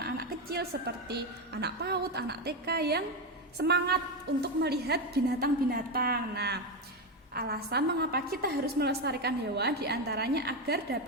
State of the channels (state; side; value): normal; both; correlation 0.11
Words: kecil seperti anak PAUD, anak TK yang semangat untuk melihat binatang-binatang. Nah, alasan mengapa kita harus melestarikan hewan diantaranya agar